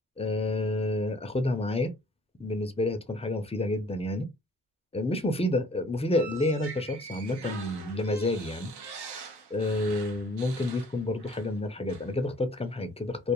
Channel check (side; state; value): both; normal; correlation 0.56